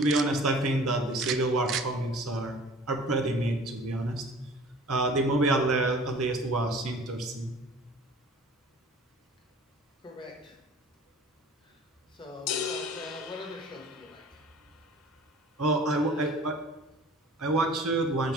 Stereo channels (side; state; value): both; normal; correlation 0.46